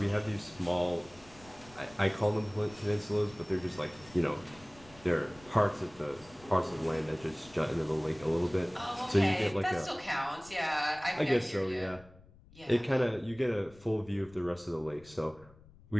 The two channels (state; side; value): noise; left; rumble, 24 dB below the sound